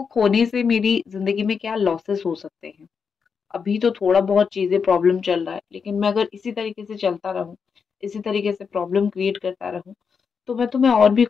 खोने से मेरी ज़िंदगी में क्या लॉसेस हो सकते हैं। अभी तो थोड़ा बहुत चीज़ें प्रॉब्लम चल रहा है, लेकिन मैं अगर इसी तरीके से चलता रहूँ, इसी तरीके से प्रॉब्लम क्रिएट करता रहूँ, तो मैं तुम्हें और भी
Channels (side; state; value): right; quieter; 6.0 dB